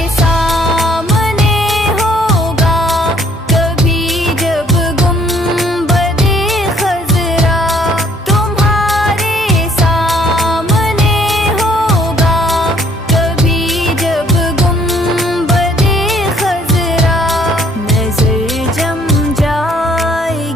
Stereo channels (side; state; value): both; normal; correlation 0.62